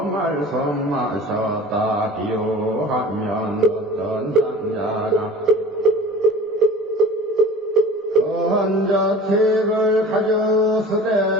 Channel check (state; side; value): normal; both; correlation 0.40